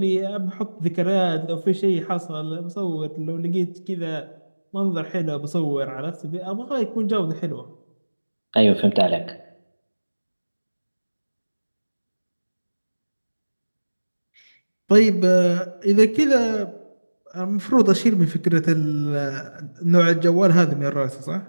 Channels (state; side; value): inverted; both; correlation -1.00